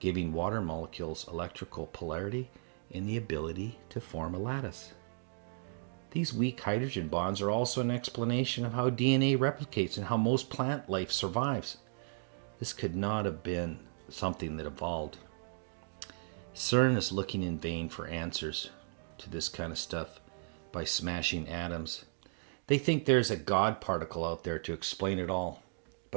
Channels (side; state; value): left; silent; digital silence